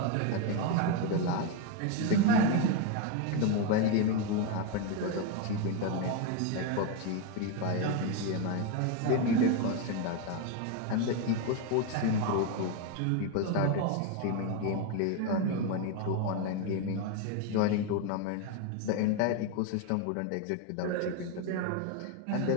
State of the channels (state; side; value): different; both; correlation 0.02